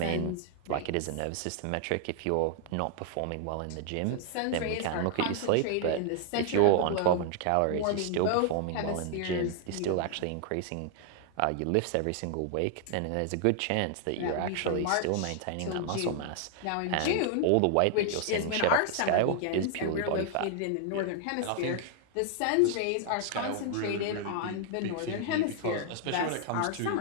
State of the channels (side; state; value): both; different; correlation 0.00